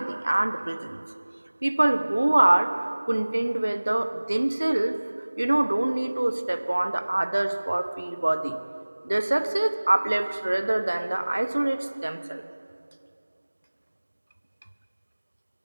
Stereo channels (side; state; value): both; inverted; correlation -1.00